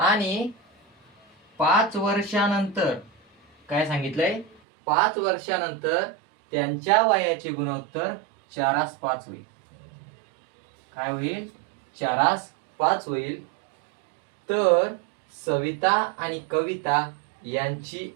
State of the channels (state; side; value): drops out; left; at 4.6 s